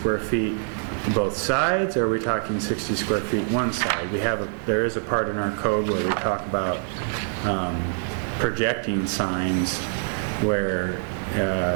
feet both sides, or are we talking 60 square feet one side? There is a part in our code where we talk about projecting signs where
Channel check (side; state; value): left; silent; 62 dB below the other